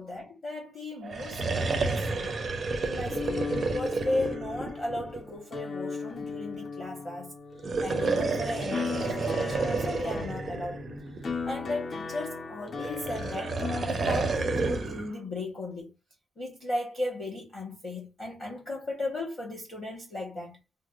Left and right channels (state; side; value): normal; both; correlation 0.82